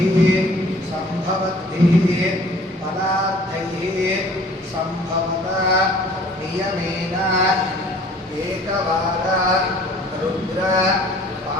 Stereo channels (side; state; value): both; normal; correlation 0.52